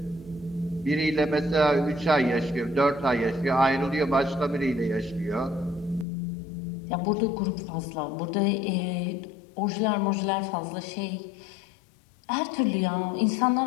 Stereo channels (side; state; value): right; drops out; at 6.1 s